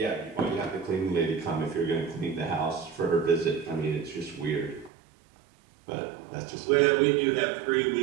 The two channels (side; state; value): left; drops out; at 4.9 s